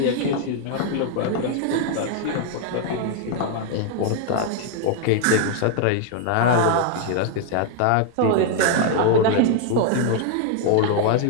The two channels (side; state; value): both; different; correlation 0.00